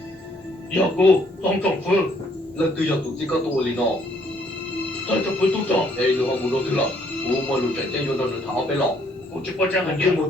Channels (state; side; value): normal; both; correlation 0.66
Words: 要不当政府，lần từ giờ tụi chỉ có tụi liền nó 当政府督长， đây nữa không muốn đâu thứ là u mà lụt chạy vô đâu được tháo bé lọ 我这波这很严，